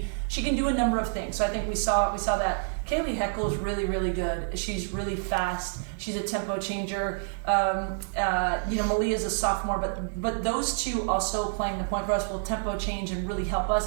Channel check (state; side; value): silent; left; 58 dB below the other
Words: do a number of things. So I think we saw that. Kaylee Heckel is really, really good. She's really fast. She's a tempo changer. Malia's a sophomore, but those 2 also playing the point for us will tempo change and really help us.